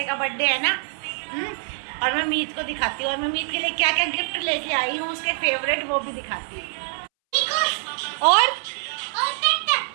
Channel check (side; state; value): left; silent; 62 dB below the other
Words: का बर्थडे है ना। और मैं मीत को दिखाती हूँ, और मैं मीत के लिए क्या क्या गिफ्ट लेके आई हूँ, उसके फेवरेट वो भी दिखाती हूँ। और